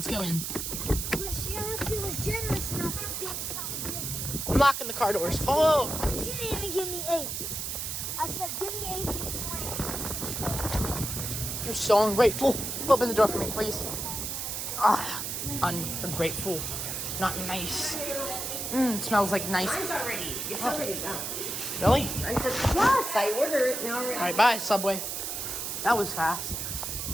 go in. But she actually was generous enough to give me something. I'm locking the car doors. Follow. She didn't even give me 8. I said, give me 8 pieces. You're so ungrateful. Open the door for me, please. Ah, ungrateful. Not nice. It smells like nice. It's already done. Really? Yes, I ordered it now. All right, bye, Subway. That was fast.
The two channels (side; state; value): right; noise; hiss, 4 dB below the sound